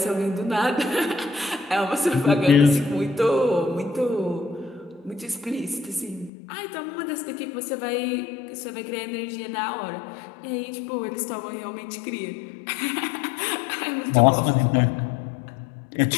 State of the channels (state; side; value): drops out; right; at 6.3 s